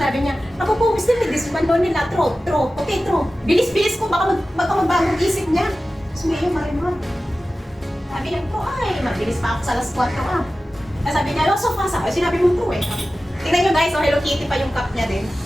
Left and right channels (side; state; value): both; normal; correlation 0.95